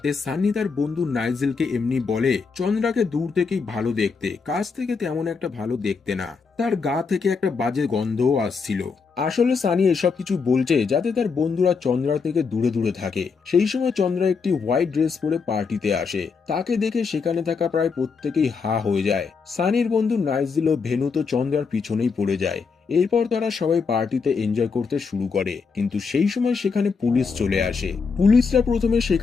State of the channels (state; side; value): quieter; right; 5.2 dB